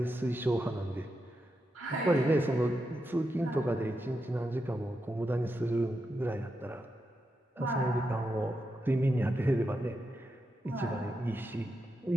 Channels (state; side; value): normal; both; correlation 0.86